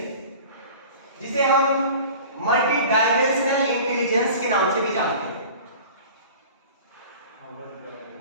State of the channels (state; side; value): inverted; both; correlation -0.40